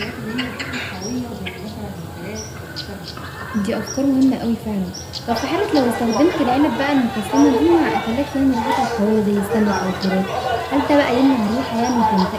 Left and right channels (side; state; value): both; identical; correlation 1.00